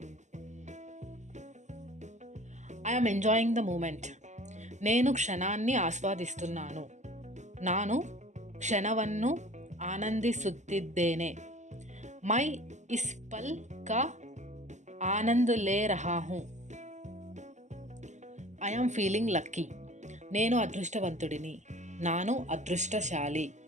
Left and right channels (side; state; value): left; late; 0.34 ms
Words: I am enjoying the moment. నేను క్షణాన్ని ఆస్వాదిస్తున్నాను. ನಾನು ಕ್ಷಣವನ್ನು ಆನಂದಿಸುತ್ತಿದ್ದೇನೆ. मैं इस पल का आनंद ले रहा हूँ. I am feeling lucky. నేను అదృష్టవంతుడిని. ನಾನು ಅದೃಷ್ಟಶಾಲಿ.